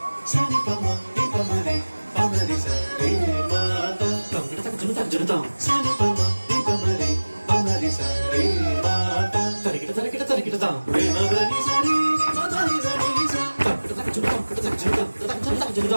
సని పమ ని పమరి పమరి సరి మాత తంగిట తక జునుత జునుతాం సని పమ ని పమరి పమరి సరి మాత తరికిట తరికిట తరికిటతాం రేమగని సరి మదని సరి స తంగిట తక జునుతాం కిట తక జునుతాం కిట తక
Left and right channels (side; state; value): both; inverted; correlation -1.00